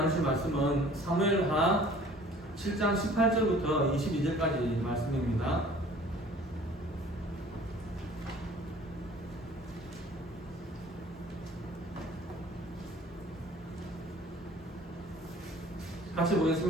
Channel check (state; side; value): normal; both; correlation 0.50